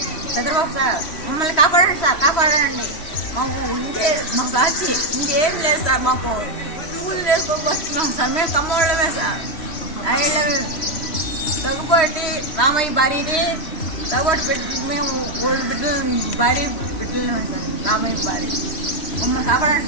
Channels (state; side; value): late; right; 3.1 ms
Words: చంద్రబాబు సార్ మమ్మల్ని కాపాడండి సార్, కాపాడండి. మాకు ఇంకే మాకు వచ్చి ఇంకేం లేదు సార్. మాకు పూలు వేసుకోవచ్చున్నాం సార్. మేము కమ్మోళ్ళమే సార్. ఐళ్ళమే తగ్గుబట్టి రామయ్య భార్యని తగ్గుబట్టి పెట్టి మేము ఓల్డ్ బిడ్డలు భార్య బిడ్డలమే సార్. రామయ్య భార్య మమ్మల్ని